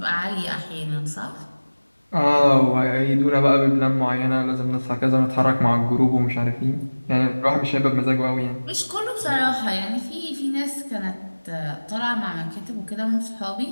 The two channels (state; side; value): inverted; both; correlation -1.00